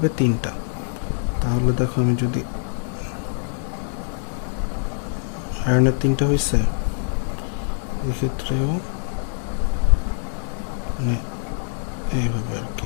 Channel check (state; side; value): silent; right; digital silence